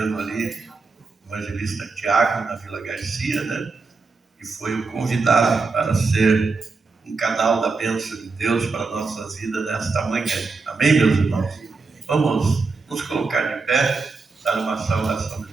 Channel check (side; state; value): left; quieter; 4.2 dB